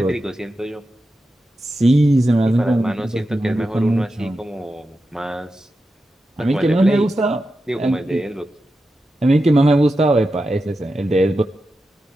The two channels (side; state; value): both; normal; correlation 0.90